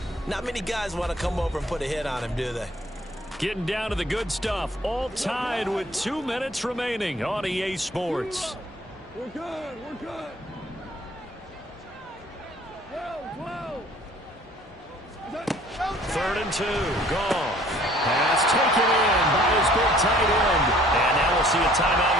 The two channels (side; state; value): both; normal; correlation 0.55